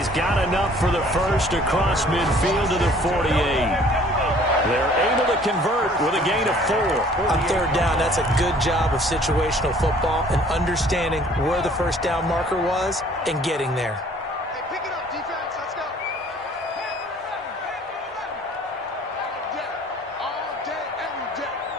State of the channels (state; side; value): normal; both; correlation 0.55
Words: got enough for the first across midfield to the 48. They're able to convert with a gain of 4. On 3rd down, that's a good job of situational football and understanding where the first down marker was and getting there. Hey, pick it up, defense. Let's go. All day, every day,